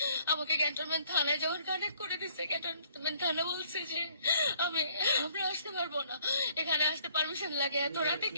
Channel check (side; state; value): both; inverted; correlation -0.63